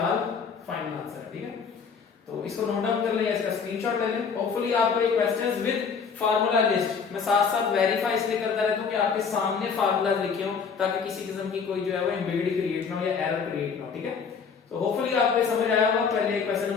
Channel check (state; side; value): quieter; right; 5.9 dB